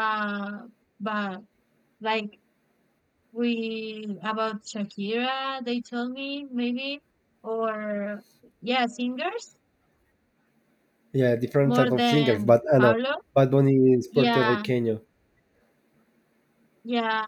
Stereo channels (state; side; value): identical; both; correlation 1.00